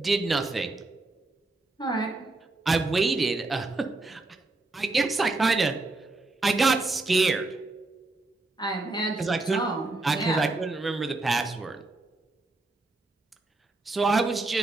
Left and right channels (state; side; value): quieter; left; 3.2 dB